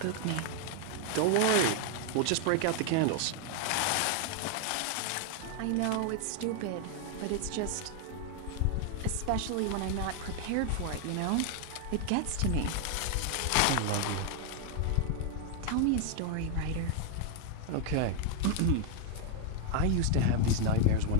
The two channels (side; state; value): both; different; correlation 0.00